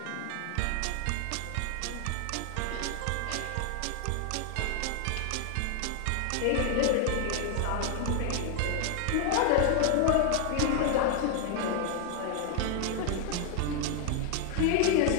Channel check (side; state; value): both; different; correlation 0.00